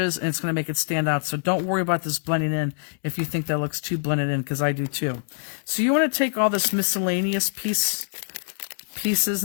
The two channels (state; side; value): silent; right; digital silence